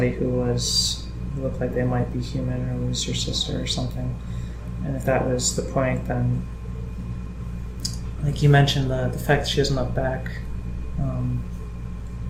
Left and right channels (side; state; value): both; identical; correlation 1.00